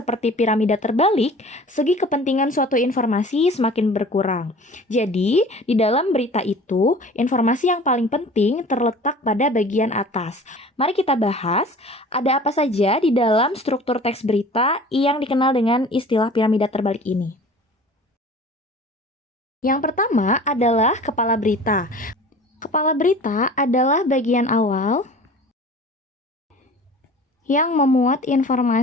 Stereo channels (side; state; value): both; normal; correlation 0.43